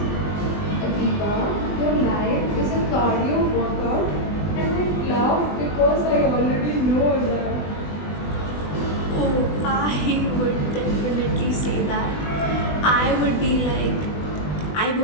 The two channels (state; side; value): late; right; 20 ms